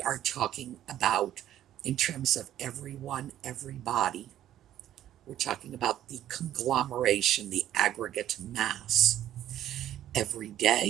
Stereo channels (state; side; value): quieter; left; 12.0 dB